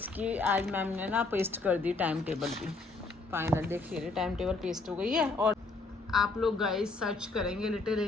आज मैम ने ना पेस्ट कर दी टाइम टेबल भी। फाइनल देखिए टाइम टेबल पेस्ट हो गई है। और आप लोग गाइस सर्च करेंगे लिटिल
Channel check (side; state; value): right; quieter; 3.6 dB